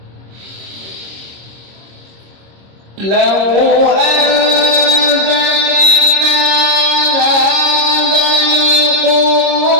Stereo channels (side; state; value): left; late; 26 ms